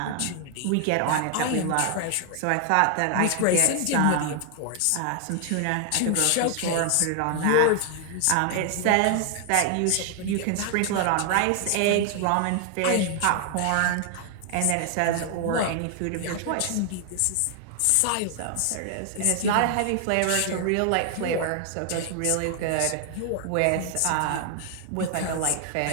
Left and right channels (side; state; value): both; different; correlation 0.00